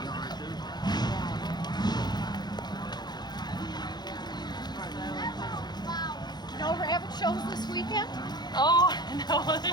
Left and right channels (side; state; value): right; late; 0.20 ms